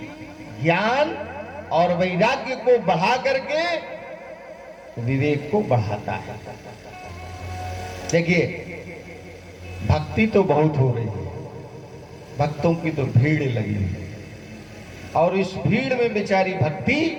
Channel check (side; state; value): both; identical; correlation 1.00